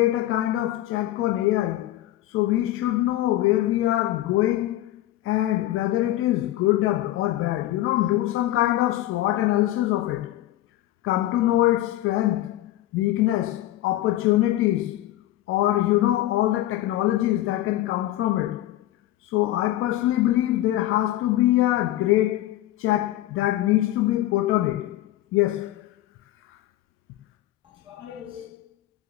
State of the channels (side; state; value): right; quieter; 15.0 dB